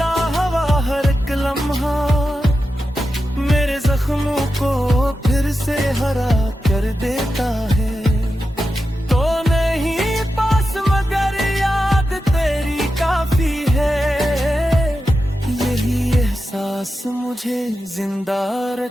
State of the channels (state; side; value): normal; both; correlation 0.90